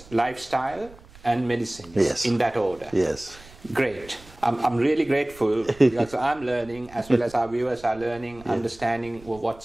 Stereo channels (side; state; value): right; noise; rumble, 22 dB below the sound